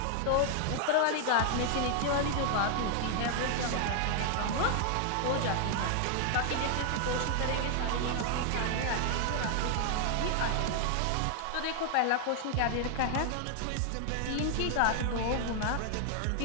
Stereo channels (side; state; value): both; different; correlation 0.00